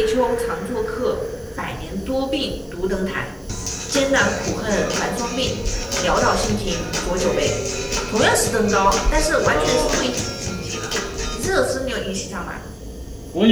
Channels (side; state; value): both; identical; correlation 1.00